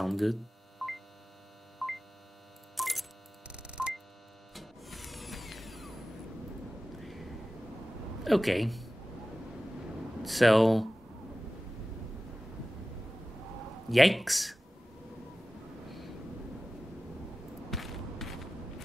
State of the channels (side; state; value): both; normal; correlation 0.96